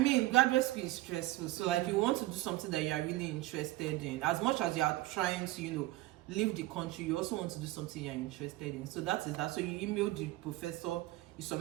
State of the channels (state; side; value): quieter; left; 17.8 dB